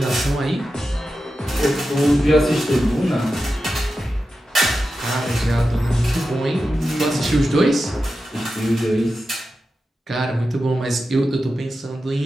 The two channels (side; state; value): both; normal; correlation 0.91